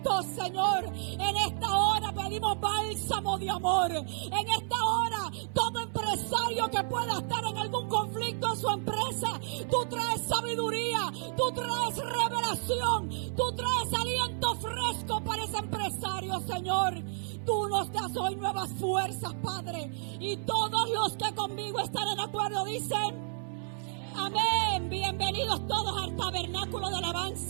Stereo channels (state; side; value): silent; left; 57 dB below the other